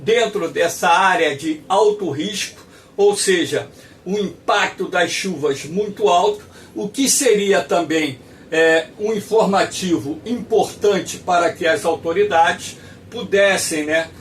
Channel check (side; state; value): both; identical; correlation 1.00